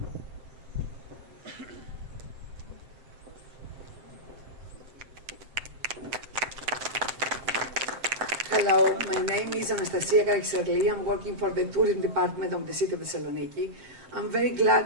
Hello, my name is Anastasia Karaxarli. I'm working for the tourism department of the city of Thessaloniki. I'm very glad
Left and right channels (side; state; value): left; late; 7.7 ms